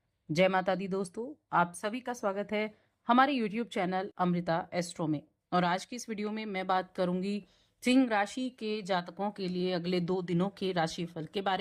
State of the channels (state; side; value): identical; both; correlation 1.00